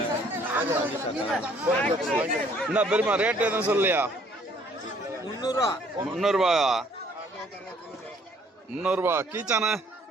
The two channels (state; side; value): normal; both; correlation 0.61